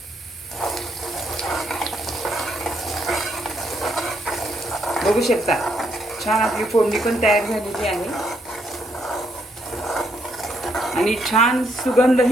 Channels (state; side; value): normal; both; correlation 0.74